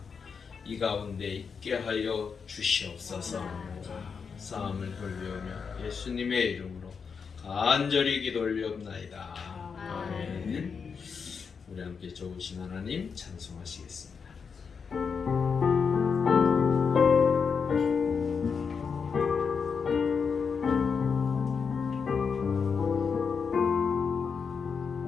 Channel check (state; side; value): quieter; right; 5.9 dB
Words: 이 가운데 있게 하여 주시옵소서. 감사함을 돌려오며 예수님의 이름으로 간절히 기도 올리옵나이다. 아멘. 우리 함께 좋으신 하나님 찬송하시겠습니다.